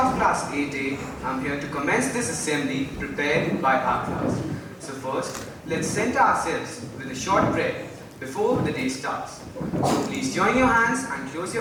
Class 8A, am here to commence this assembly prepared by our class. So first, let's center ourselves with a short prayer before the day starts. So please join your hands and close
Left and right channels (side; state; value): both; identical; correlation 1.00